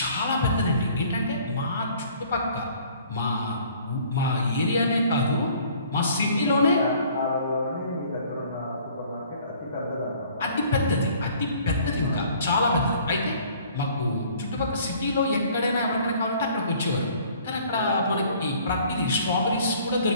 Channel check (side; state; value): both; inverted; correlation -0.55